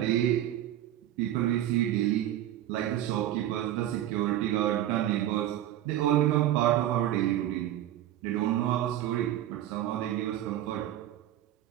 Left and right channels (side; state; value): left; quieter; 12.6 dB